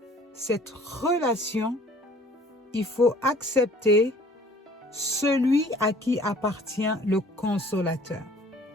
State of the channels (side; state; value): both; normal; correlation 0.53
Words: cette relation, il faut accepter celui à qui appartient le consolateur.